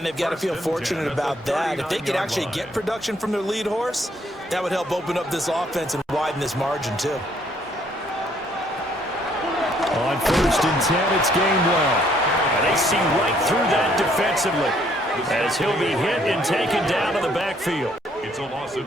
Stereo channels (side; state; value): both; normal; correlation 0.66